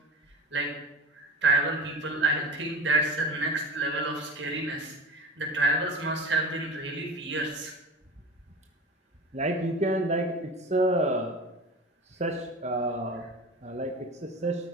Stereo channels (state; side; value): normal; both; correlation 0.31